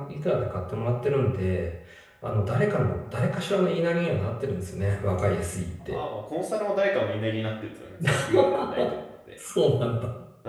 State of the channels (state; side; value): identical; both; correlation 1.00